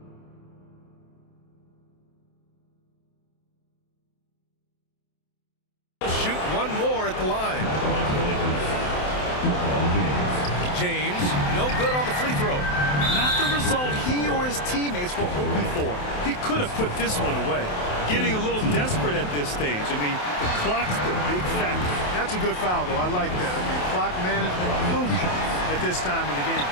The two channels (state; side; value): late; right; 28 ms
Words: shoot one more at the line. James, no good on the free throw. Not the result he or his teammates were hoping for. He could have put this one away. Getting a little desperate at this stage. I mean, the clock's the big factor. That's a good foul, though. I like that. I mean, clock management crucial at this time of the game.